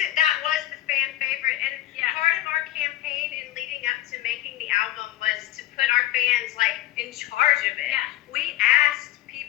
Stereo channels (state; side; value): quieter; right; 15.0 dB